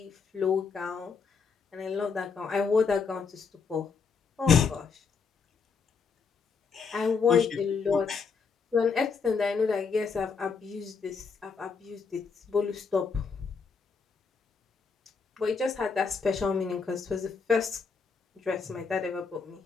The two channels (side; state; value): right; quieter; 5.4 dB